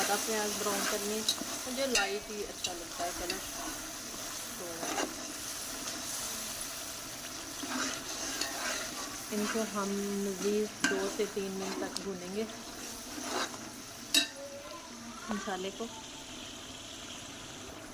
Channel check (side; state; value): both; identical; correlation 1.00